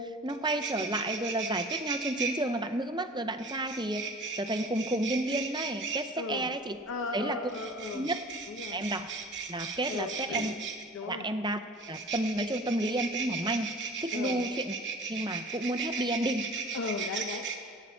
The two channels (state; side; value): normal; both; correlation 0.42